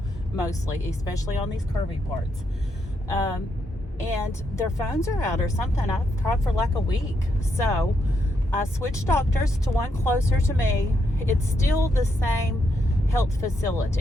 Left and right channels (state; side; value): normal; both; correlation 0.79